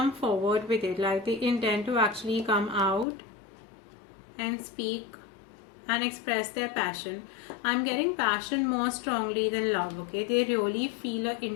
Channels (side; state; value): right; drops out; at 3.1 s